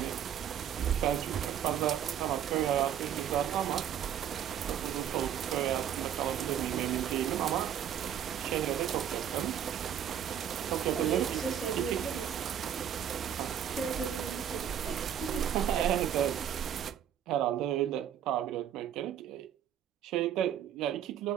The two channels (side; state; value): left; quieter; 9.7 dB